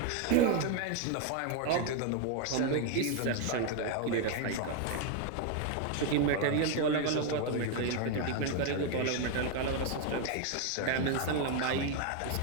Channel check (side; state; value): both; different; correlation 0.01